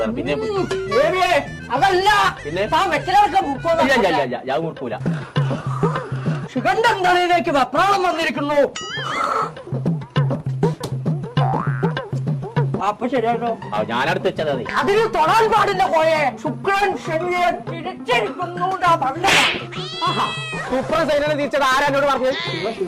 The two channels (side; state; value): both; identical; correlation 1.00